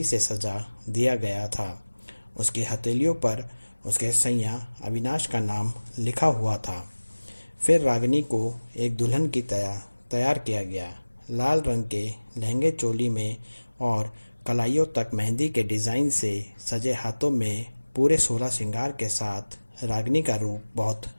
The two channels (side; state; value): both; inverted; correlation -1.00